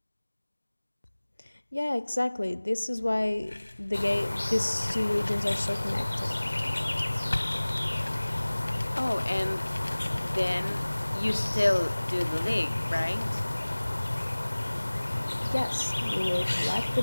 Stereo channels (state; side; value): inverted; both; correlation -1.00